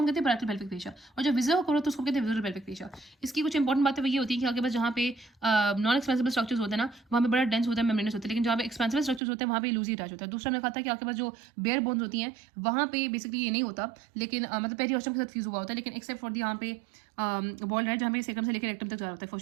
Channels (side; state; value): left; drops out; at 9.2 s